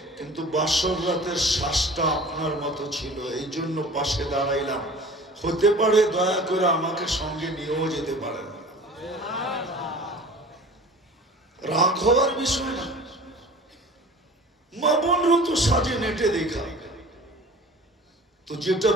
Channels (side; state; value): both; normal; correlation 0.42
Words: কিন্তু বাসর রাতের শ্বাসটা আপনার মতো ছিল, এই জন্য পাশে দাঁড়াইলাম। হতে পারে দয়া করে আমাকে সঙ্গে নিয়েও যেতে পারেন। রাগ হওয়ার বিষয় না। মা বোনরা তো সাজে নেটে দেখা। তো যেটা